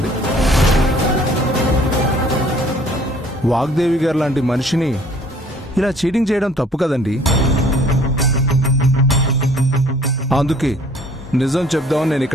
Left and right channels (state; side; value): normal; both; correlation 0.56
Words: వాగ్దేవి గారు లాంటి మనిషిని ఇలా చీటింగ్ చేయడం తప్పు కదండి. అందుకే నిజం చెప్దామని నేను